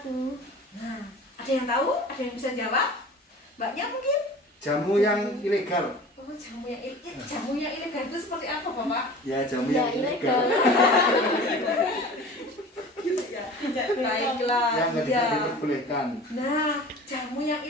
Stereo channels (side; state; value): both; normal; correlation 0.41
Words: tuh? Nah, ada yang tahu? Ada yang bisa jawab? Mbaknya mungkin? Jamu yang ilegal. Oh, jamu yang ilegal itu seperti apa, Bapak? Ya, jamu Ya, yang ilegal. Gitu ya. Baiklah. Yang nggak bisa Ya. diperbolehkan. Nah, jamu yang